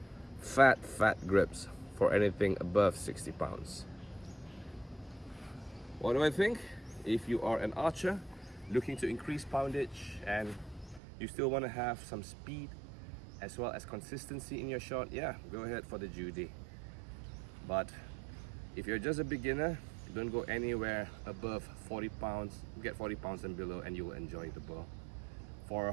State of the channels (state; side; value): drops out; left; at 11.0 s